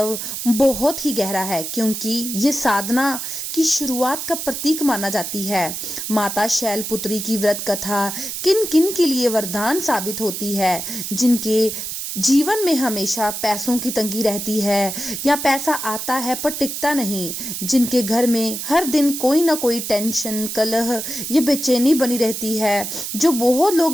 बहुत ही गहरा है क्योंकि ये साधना की शुरुआत का प्रतीक माना जाती है। माता शैलपुत्री की व्रत कथा किन किन के लिए वरदान साबित होती है, जिनके जीवन में हमेशा पैसों की तंगी रहती है या पैसा आता है पर टिकता नहीं, जिनके घर में हर दिन कोई ना कोई टेंशन, कलह या बेचैनी बनी रहती है, जो बहुत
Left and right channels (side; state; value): right; noise; hiss, 5 dB below the sound